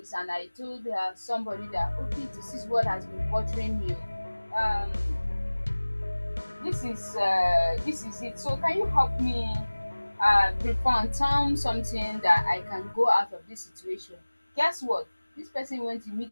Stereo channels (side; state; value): both; inverted; correlation -1.00